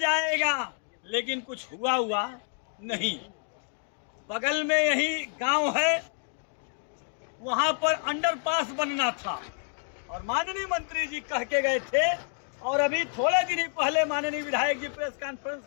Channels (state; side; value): silent; right; 59 dB below the other